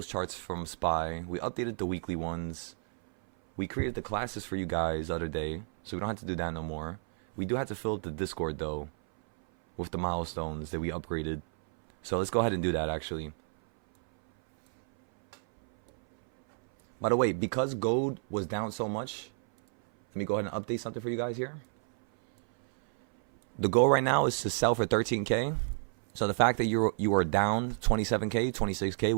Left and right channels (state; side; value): silent; left; 57 dB below the other